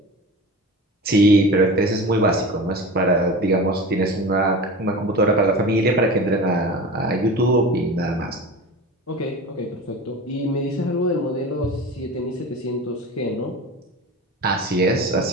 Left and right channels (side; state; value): both; normal; correlation 0.32